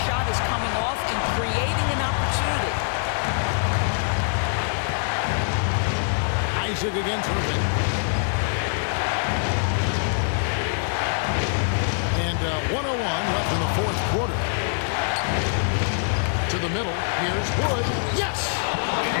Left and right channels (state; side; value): silent; right; digital silence